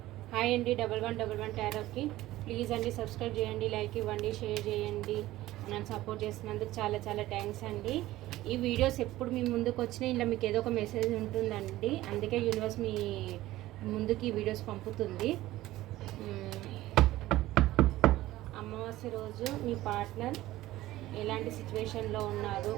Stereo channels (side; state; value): left; quieter; 16.2 dB